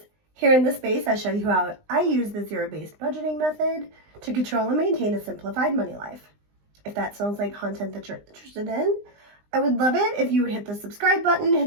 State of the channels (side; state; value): left; late; 20 ms